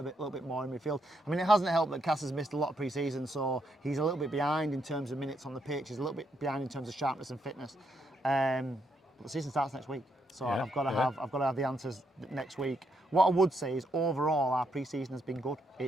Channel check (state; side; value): normal; both; correlation 0.77